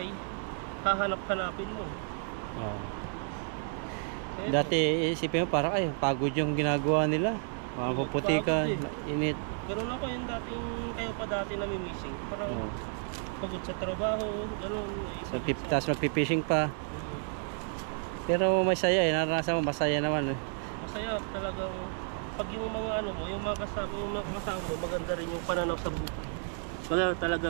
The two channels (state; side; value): silent; left; 57 dB below the other